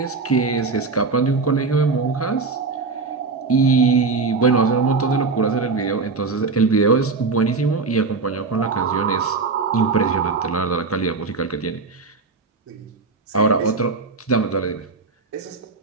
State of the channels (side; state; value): left; quieter; 4.2 dB